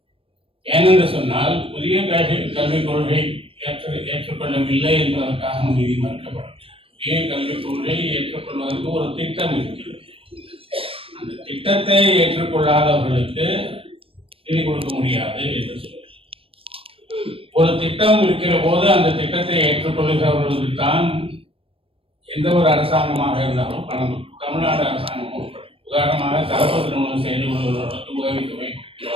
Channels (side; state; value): left; late; 0.27 ms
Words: ஏனென்று சொன்னால் புதிய கல்விக் கொள்கை ஏற்றுக்கொள்ளவில்லை என்பதற்காக நிதி மறுக்கப்படும். புதிய கல்விக் கொள்கையை ஏற்றுக்கொள்வதற்கு ஒரு திட்டம் இருக்கிறது. அந்த திட்டத்தை ஏற்றுக்கொள்ளாதவர்களுக்கு நிதி கொடுக்க முடியாது என்று சொல்லுங்கள். ஒரு திட்டம் இருக்கிற போது அந்த திட்டத்தை ஏற்றுக்கொள்கிறவர்களுக்கு தான் எந்த ஒரு அரசாங்கமாக இருந்தாலும் பணம். தமிழ்நாடு அரசாங்கம் உதாரணமாக கலப்பு திருமணம் செய்து கொள்வதற்கு உதவித்தொகை